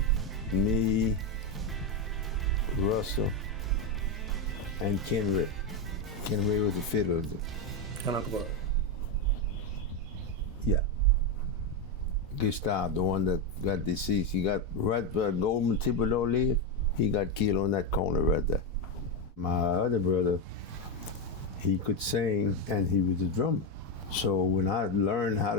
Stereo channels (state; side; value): normal; both; correlation 0.09